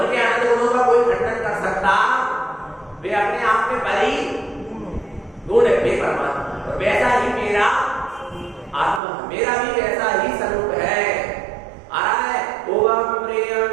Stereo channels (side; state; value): left; drops out; at 9.0 s